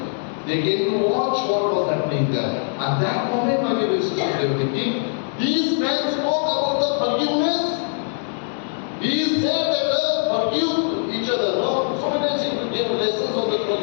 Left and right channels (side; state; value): right; silent; digital silence